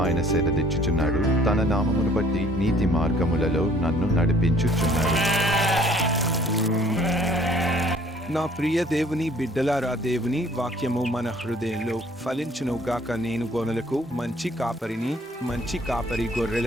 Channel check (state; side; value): normal; both; correlation 0.57